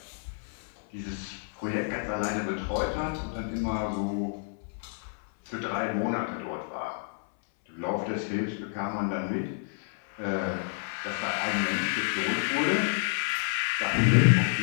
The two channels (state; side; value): silent; right; 58 dB below the other